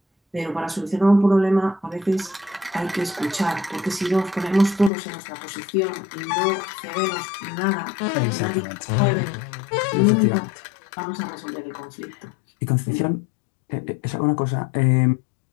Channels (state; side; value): drops out; right; at 4.9 s